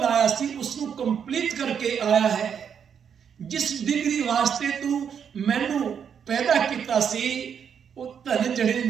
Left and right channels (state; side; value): quieter; left; 7.6 dB